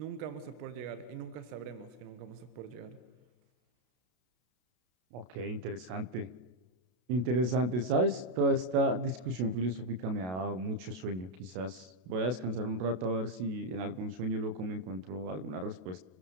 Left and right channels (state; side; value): late; left; 32 ms